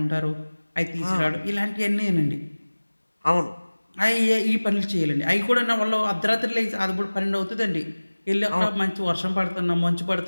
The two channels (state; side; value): inverted; both; correlation -1.00